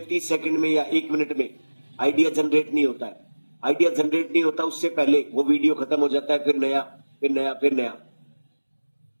30 सेकंड में या 1 मिनट में आइडिया जनरेट नहीं होता है। आइडिया जनरेट नहीं होता, उससे पहले वो वीडियो खत्म हो जाता है, फिर नया, फिर नया, फिर नया।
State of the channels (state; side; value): inverted; both; correlation -1.00